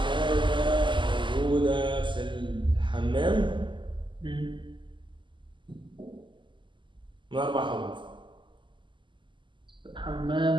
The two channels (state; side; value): late; left; 0.24 ms